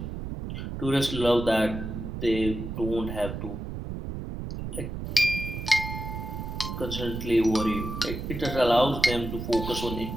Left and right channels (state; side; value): noise; right; rumble, 6 dB below the sound